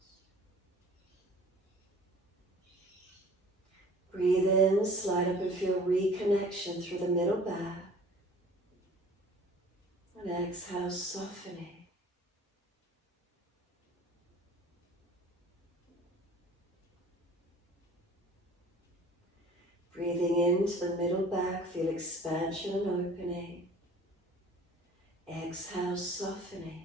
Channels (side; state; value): both; normal; correlation 0.47